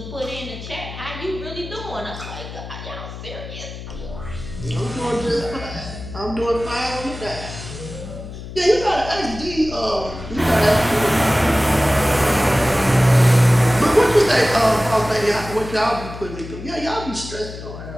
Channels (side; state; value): left; noise; hum, 11 dB below the sound